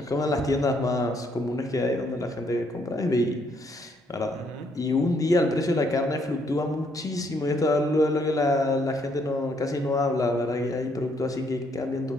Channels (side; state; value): both; normal; correlation 0.71